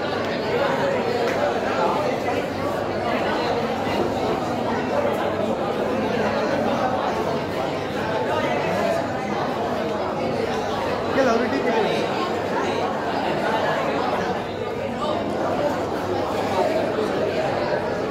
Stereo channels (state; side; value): identical; both; correlation 1.00